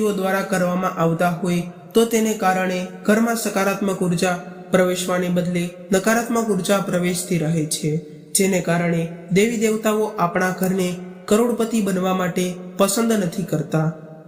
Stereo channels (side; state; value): both; identical; correlation 1.00